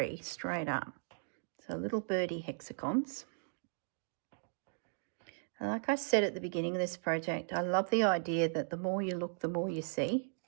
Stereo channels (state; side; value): silent; left; digital silence